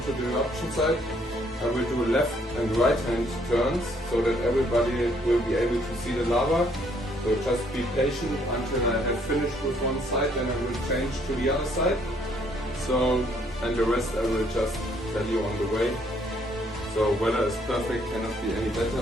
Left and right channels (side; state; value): both; normal; correlation 0.66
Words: the eruption site. I will do left and right hand turns so that everybody will be able to see the lava. So just be patient until I have finished with one side, then I will change to the other side. So, and the rest I will just tell you on the way. So weather is perfect, cannot be any better,